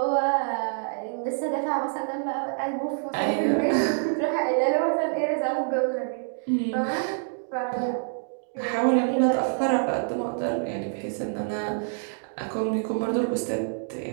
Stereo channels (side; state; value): left; silent; digital silence